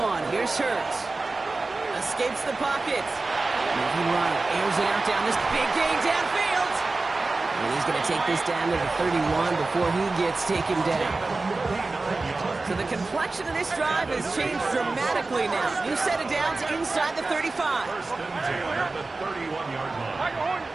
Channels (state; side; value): quieter; left; 3.5 dB